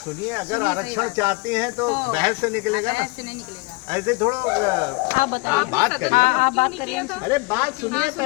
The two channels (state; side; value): quieter; right; 27.4 dB